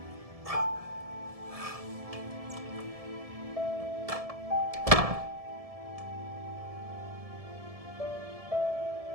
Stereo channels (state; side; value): late; left; 1.7 ms